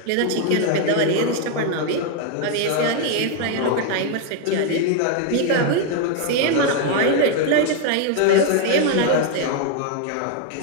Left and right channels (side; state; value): both; different; correlation 0.00